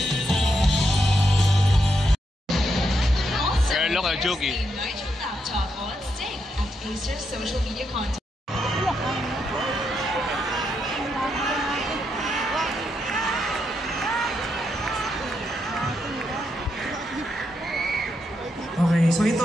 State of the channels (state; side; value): normal; both; correlation 0.81